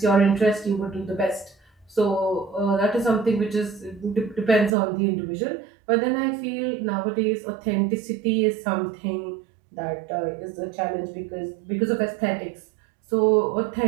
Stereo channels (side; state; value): left; drops out; at 4.8 s